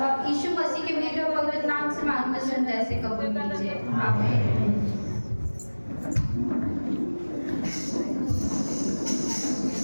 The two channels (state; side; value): inverted; both; correlation -1.00